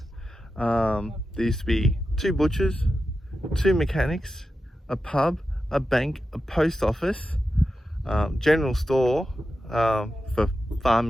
there used to be 2 butchers, 2 mechanics, a pub, a bank, a post office, general store for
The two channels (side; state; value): both; normal; correlation 0.91